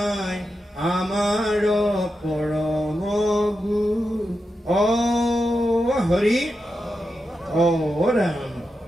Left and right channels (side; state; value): both; normal; correlation 0.88